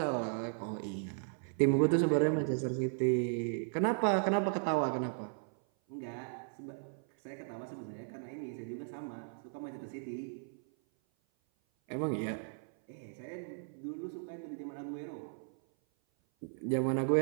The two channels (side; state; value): left; silent; 54 dB below the other